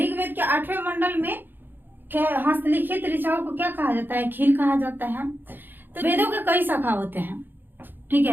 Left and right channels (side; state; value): left; late; 0.094 ms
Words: के 8वें मंडल में हस्तलिखित ऋचाओं को क्या कहा जाता है? खील कहा जाता है। तो वेदों के कई शाखा होते हैं। ठीक है,